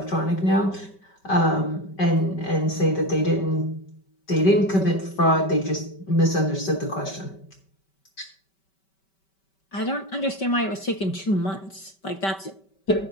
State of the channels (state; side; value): late; right; 5.2 ms